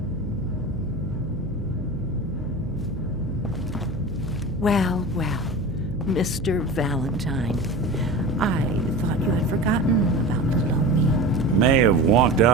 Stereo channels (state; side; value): noise; right; hum, 9 dB below the sound